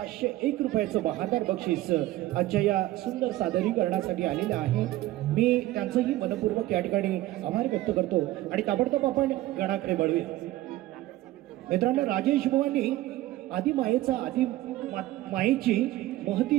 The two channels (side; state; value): left; quieter; 16.2 dB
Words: रुपयाचं बहारदार बक्षीस आजच्या या सुंदर सादरीकरणासाठी आलेलं आहे. मी त्यांचंही मनपूर्वक या ठिकाणी आभार व्यक्त करतो आणि ताबडतोब आपण गणाकडे वळूया. मित्रांनो, राजेश बुवांनी आदी मायेचा आदी मायेची महती